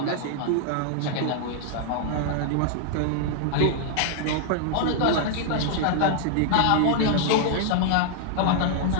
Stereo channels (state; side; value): different; both; correlation 0.00